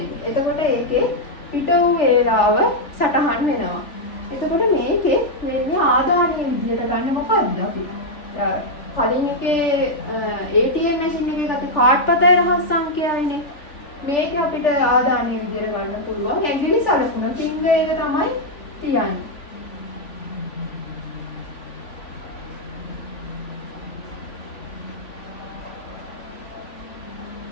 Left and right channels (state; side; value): late; right; 3.4 ms